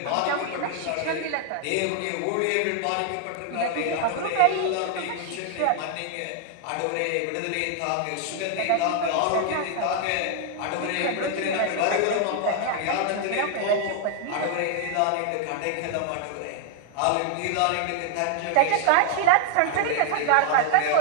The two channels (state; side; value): different; both; correlation 0.00